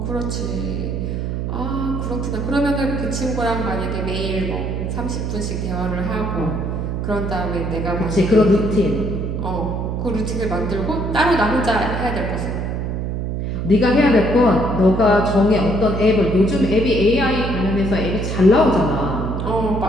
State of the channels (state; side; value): noise; right; hum, 2 dB below the sound